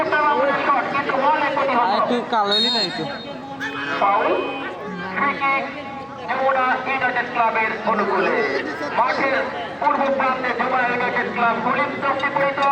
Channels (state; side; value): identical; both; correlation 1.00